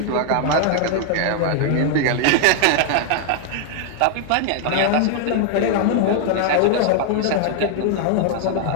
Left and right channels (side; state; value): both; different; correlation 0.00